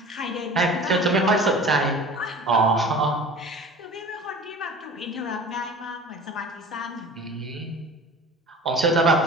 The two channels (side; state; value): both; normal; correlation 0.41